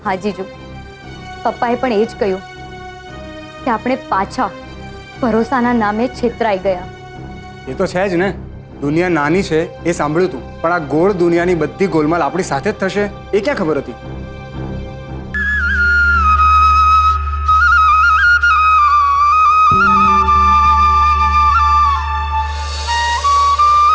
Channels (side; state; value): both; identical; correlation 1.00